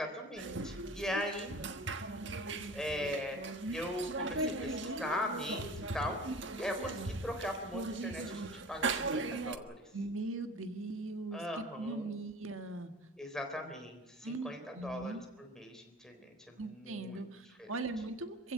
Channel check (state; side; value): normal; both; correlation 0.40